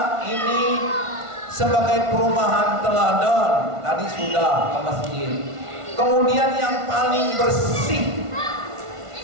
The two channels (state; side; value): late; left; 1.5 ms